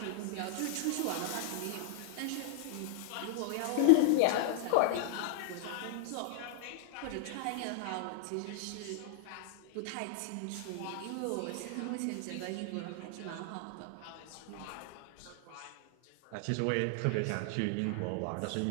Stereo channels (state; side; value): different; both; correlation 0.00